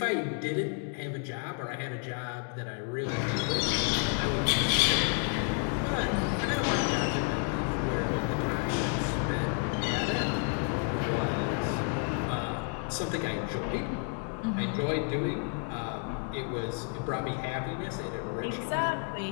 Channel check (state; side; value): quieter; right; 37.8 dB